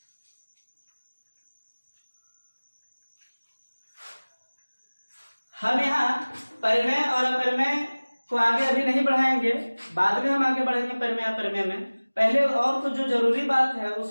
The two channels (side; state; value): both; inverted; correlation -1.00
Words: हम यहाँ परिमेय और अपरिमेय को आगे अभी नहीं बढ़ाएंगे, बाद में हम आगे बढ़ेंगे परिमेय अपरिमेय में। पहले और तो जो जरूरी बात है